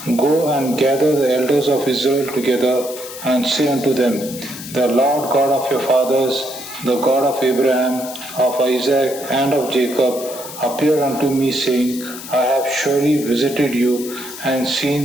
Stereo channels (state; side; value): noise; left; hiss, 12 dB below the sound